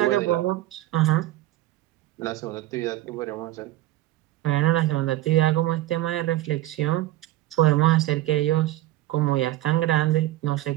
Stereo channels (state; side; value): quieter; left; 15.6 dB